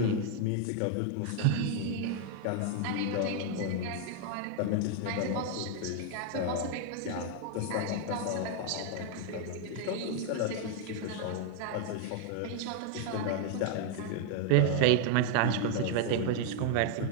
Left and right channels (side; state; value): both; different; correlation 0.00